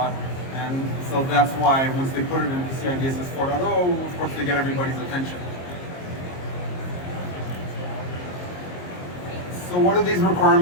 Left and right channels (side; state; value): right; late; 22 ms